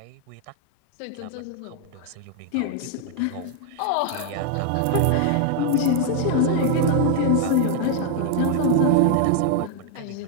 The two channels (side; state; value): both; different; correlation 0.00